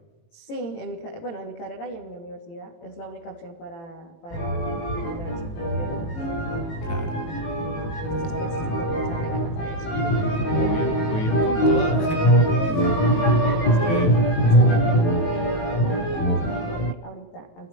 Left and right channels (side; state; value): right; late; 18 ms